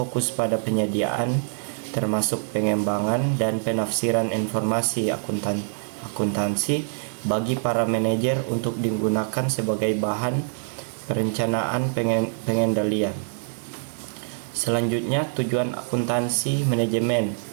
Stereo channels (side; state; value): left; silent; 62 dB below the other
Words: pada penyediaan, termasuk pengembangan dan penafsiran informasi akuntansi bagi para manajer untuk digunakan sebagai bahan perencanaan pengendalian. Selanjutnya, tujuan akuntansi manajemen.